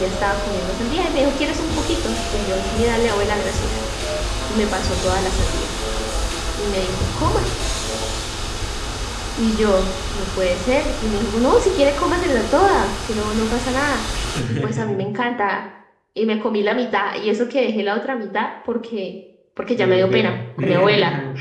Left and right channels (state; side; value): identical; both; correlation 1.00